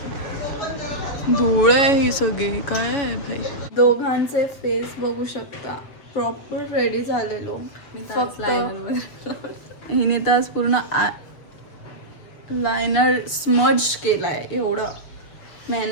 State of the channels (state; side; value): late; right; 7.1 ms